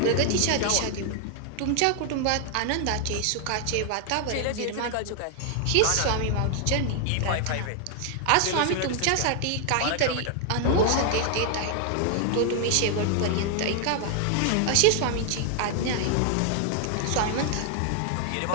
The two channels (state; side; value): different; both; correlation 0.00